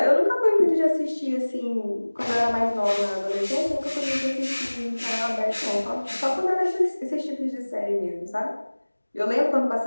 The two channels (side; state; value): both; inverted; correlation -1.00